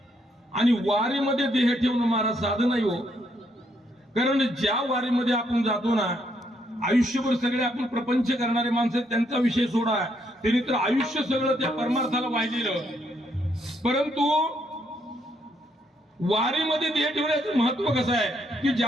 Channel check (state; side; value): normal; both; correlation 0.74